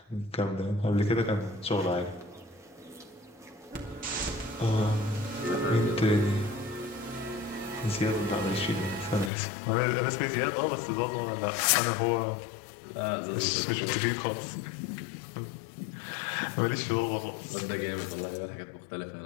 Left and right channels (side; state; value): right; drops out; at 9.3 s